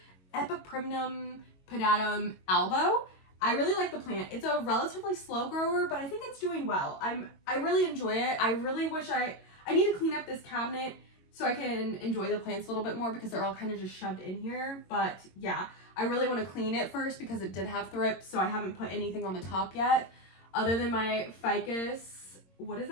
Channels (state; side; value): late; right; 22 ms